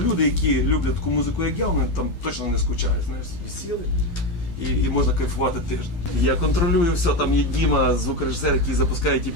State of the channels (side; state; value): right; late; 12 ms